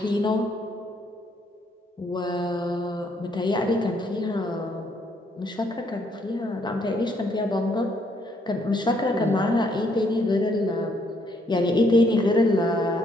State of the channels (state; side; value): normal; both; correlation 0.70